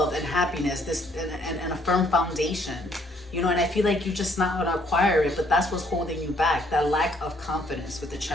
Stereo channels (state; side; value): normal; both; correlation 0.66